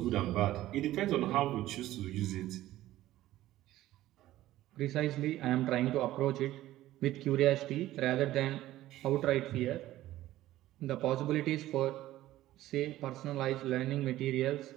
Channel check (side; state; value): left; quieter; 14.9 dB